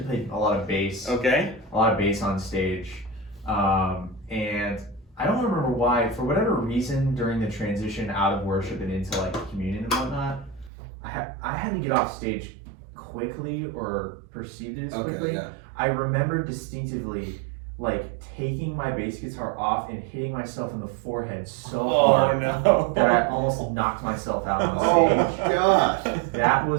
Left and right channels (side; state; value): left; drops out; at 10.7 s